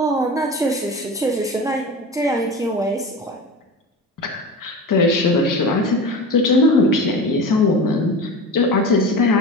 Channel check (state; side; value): normal; both; correlation 0.30